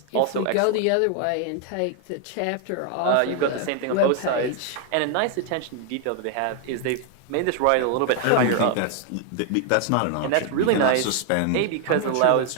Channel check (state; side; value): different; both; correlation 0.00